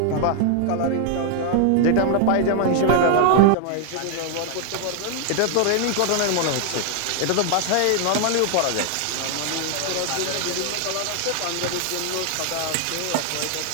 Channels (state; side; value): different; both; correlation 0.00